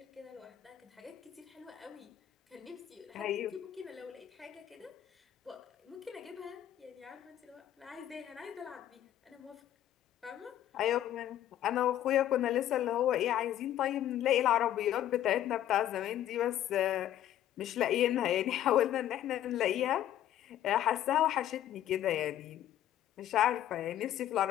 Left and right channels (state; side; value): quieter; right; 11.9 dB